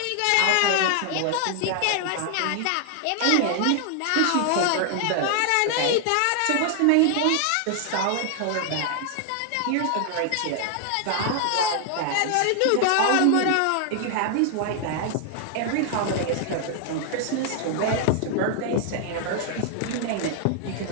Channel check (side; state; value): both; different; correlation 0.00